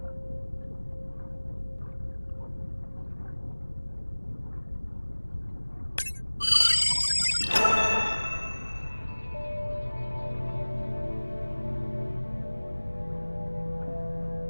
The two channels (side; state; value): both; inverted; correlation -1.00